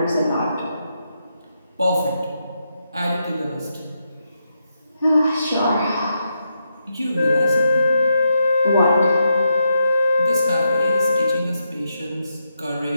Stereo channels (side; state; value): both; inverted; correlation -0.83